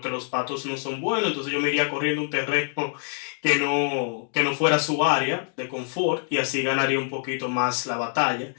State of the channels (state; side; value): silent; right; digital silence